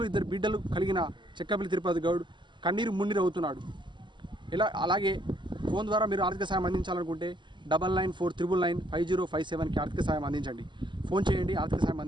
2 బిడ్డలు కలిగిన చెక్కపల్లి తిరుపతి గౌడ్ కన్నీరు మున్నీరు అవుతున్నాడు. అలాగే ఫోన్ ద్వారా మీరు ఆర్థిక సహాయం అందించాలనుకుంటే 9949995057కి ఆర్థిక సహాయం అందించండి. ఫోన్ చేయండి, ఆర్థిక సహాయం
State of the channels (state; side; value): late; left; 0.22 ms